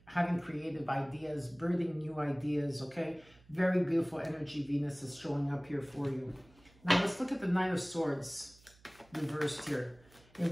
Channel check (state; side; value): noise; right; hum, 28 dB below the sound